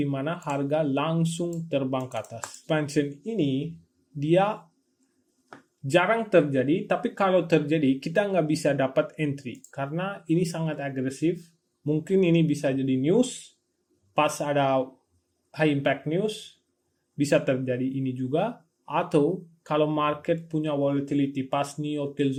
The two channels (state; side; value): identical; both; correlation 1.00